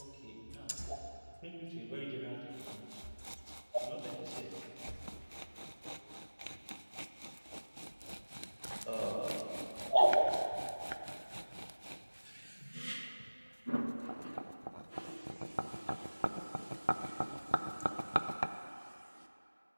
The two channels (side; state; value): both; inverted; correlation -1.00